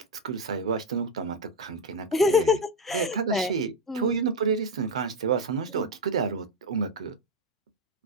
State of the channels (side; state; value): both; normal; correlation 0.09